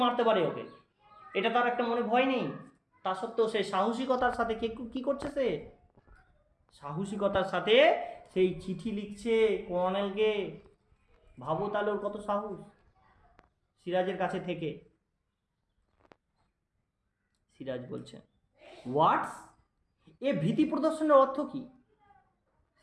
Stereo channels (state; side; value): identical; both; correlation 1.00